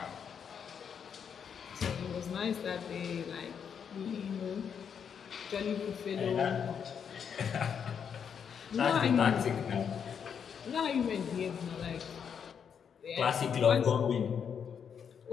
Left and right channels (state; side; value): quieter; right; 7.4 dB